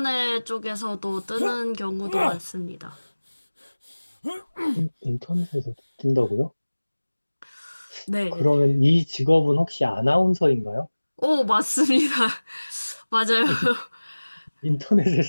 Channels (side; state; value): both; inverted; correlation -1.00